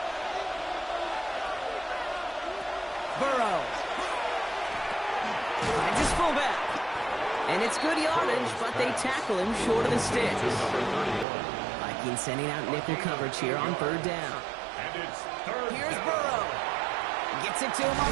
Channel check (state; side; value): drops out; left; at 11.2 s